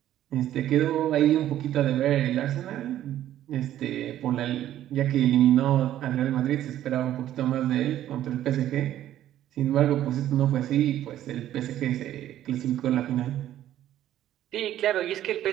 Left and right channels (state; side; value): quieter; left; 12.4 dB